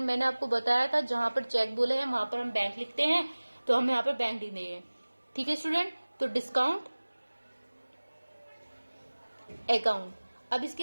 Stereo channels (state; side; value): inverted; both; correlation -1.00